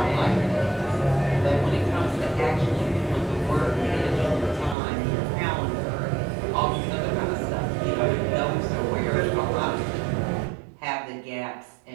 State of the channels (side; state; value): left; drops out; at 4.8 s